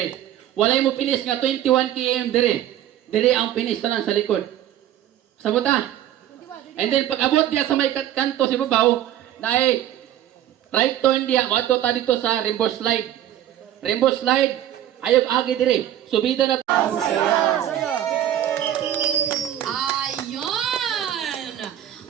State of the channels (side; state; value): left; quieter; 11.8 dB